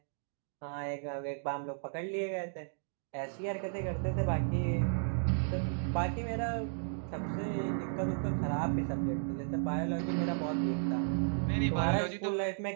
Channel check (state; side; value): silent; left; digital silence